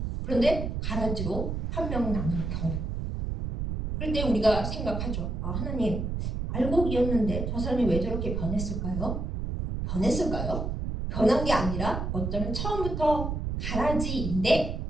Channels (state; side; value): noise; right; rumble, 3 dB below the sound